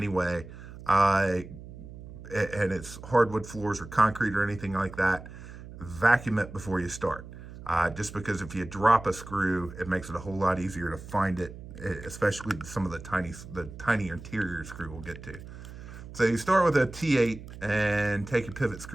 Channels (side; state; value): right; noise; hum, 14 dB below the sound